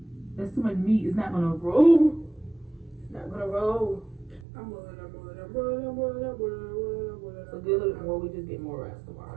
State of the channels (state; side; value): drops out; left; at 4.5 s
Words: That's too much meat. It's not gonna roll. It's not gonna roll. So get a little bit more. We just get more rice